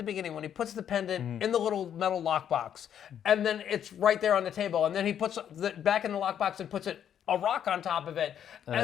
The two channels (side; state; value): right; quieter; 9.3 dB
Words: beginning when he puts the pendant in the little metal lockbox, and then it's right there on the table, and then he puts it back in the lockbox and puts a rock on top of it,